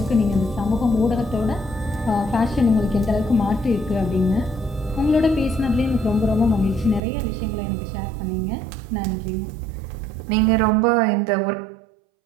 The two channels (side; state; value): left; drops out; at 7.0 s